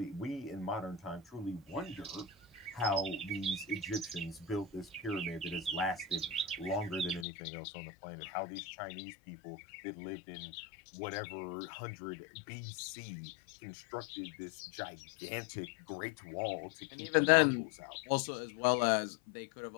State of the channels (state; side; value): drops out; right; at 7.2 s